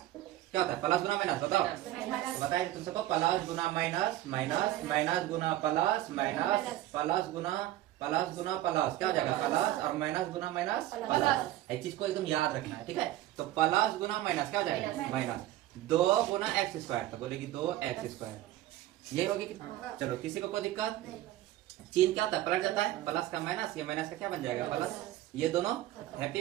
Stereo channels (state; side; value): quieter; left; 14.7 dB